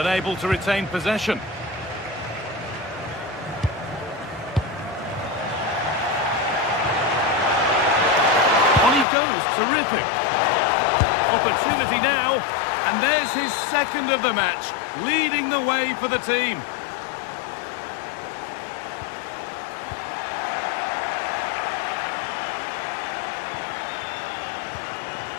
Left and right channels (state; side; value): drops out; right; at 9.1 s